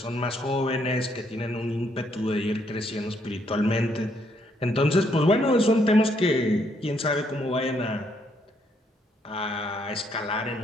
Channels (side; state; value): both; normal; correlation 0.72